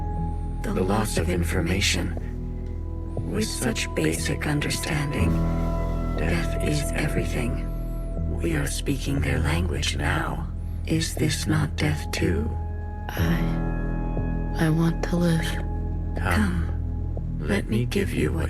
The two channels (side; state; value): both; identical; correlation 1.00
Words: the loss of information. With such basic understanding, death is everything. We are speaking their language now. Is this not death too? I want to live. Come, let me give you